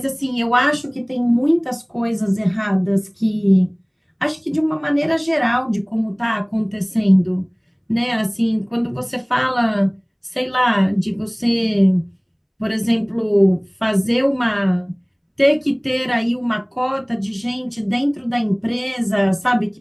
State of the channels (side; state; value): both; identical; correlation 1.00